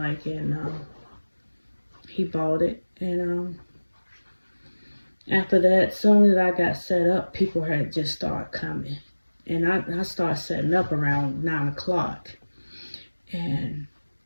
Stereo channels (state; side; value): inverted; both; correlation -1.00